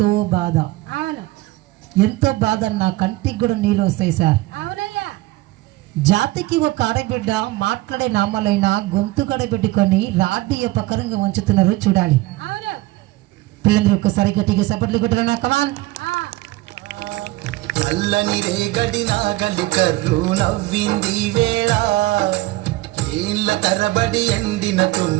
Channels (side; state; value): left; quieter; 18.8 dB